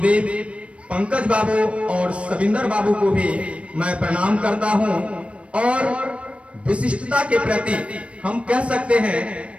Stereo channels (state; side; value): late; left; 0.061 ms